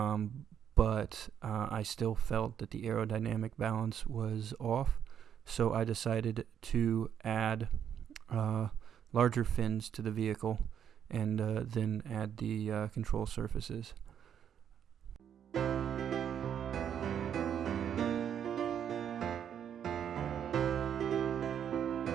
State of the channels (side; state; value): left; quieter; 8.9 dB